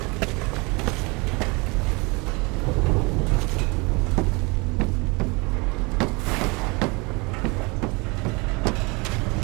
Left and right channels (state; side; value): quieter; left; 27.8 dB